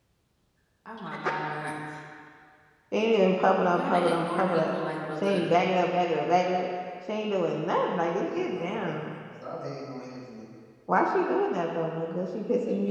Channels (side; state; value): both; identical; correlation 1.00